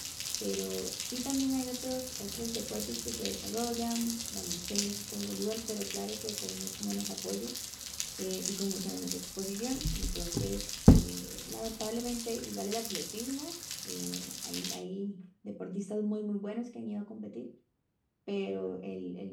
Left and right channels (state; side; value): identical; both; correlation 1.00